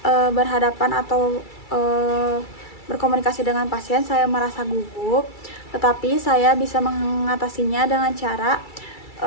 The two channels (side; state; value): right; late; 2.3 ms